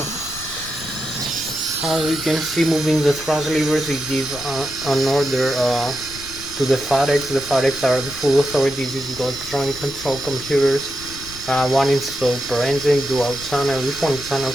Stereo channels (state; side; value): noise; left; rumble, 17 dB below the sound